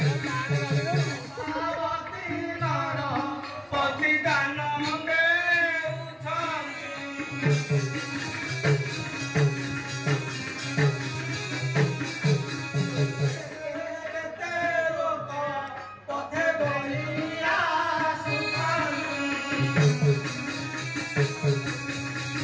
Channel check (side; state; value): both; identical; correlation 1.00